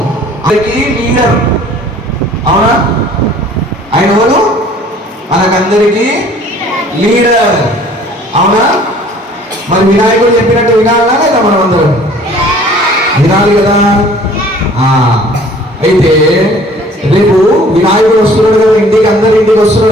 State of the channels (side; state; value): both; normal; correlation 0.53